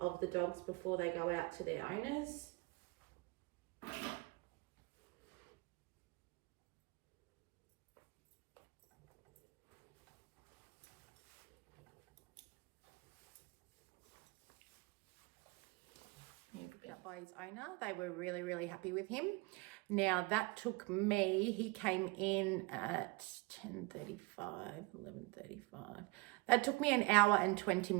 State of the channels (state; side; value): quieter; left; 25.2 dB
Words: the dogs before they go out to their owners. Picked up by his owner. They were really, really happy with him. Now that took me, he came in at 10:35, 11:35. That took me 1 hour and 20